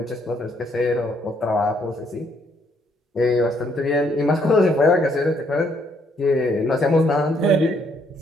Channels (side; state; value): both; normal; correlation 0.70